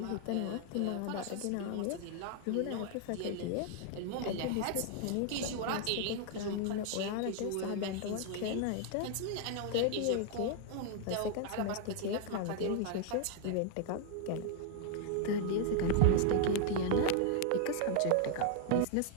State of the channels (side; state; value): both; different; correlation 0.00